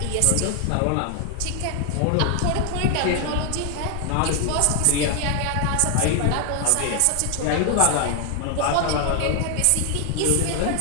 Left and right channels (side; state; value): both; different; correlation 0.00